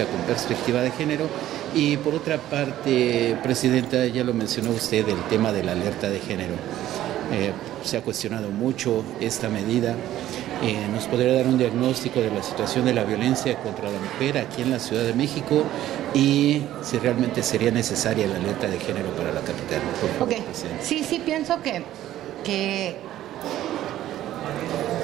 con perspectiva de género. Y por otra parte, Presidenta, ya lo mencionó usted, el tema de la alerta de género. Se ha cuestionado mucho esta medida. ¿Nos podría dar un diagnóstico de la situación de la violencia contra la mujer aquí en la Ciudad de México y si realmente sería necesaria la alerta de género para la capital? Por favor, Presidenta. Sí, pienso que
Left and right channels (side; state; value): left; quieter; 13.3 dB